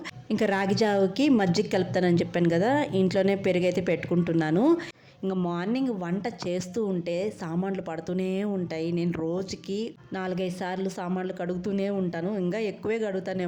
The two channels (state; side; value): identical; both; correlation 1.00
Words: ఇంకా రాగి జావకి మజ్జిగ కలుపుతానని చెప్పాను కదా, ఇంట్లోనే పెరుగైతే పెట్టుకుంటున్నాను. ఇంకా మార్నింగ్ వంట చేస్తూ ఉంటే సామాన్లు పడుతూనే ఉంటాయి. నేను రోజుకి 4-5 సార్లు సామాన్లు కడుగుతూనే ఉంటాను, ఇంకా ఎక్కువే